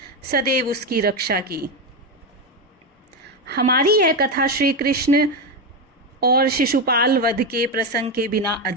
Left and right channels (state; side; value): normal; both; correlation 0.11